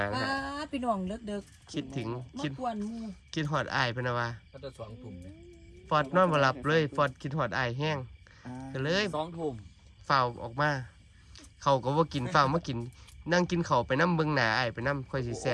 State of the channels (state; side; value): identical; both; correlation 1.00